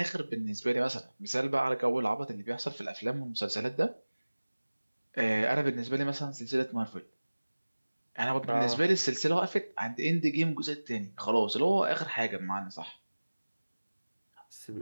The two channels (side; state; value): both; inverted; correlation -1.00